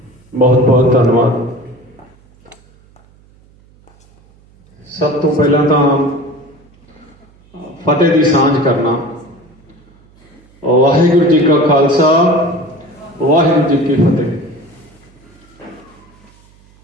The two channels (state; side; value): noise; right; hum, 29 dB below the sound